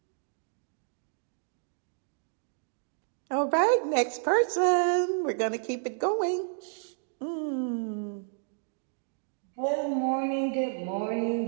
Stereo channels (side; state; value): left; silent; digital silence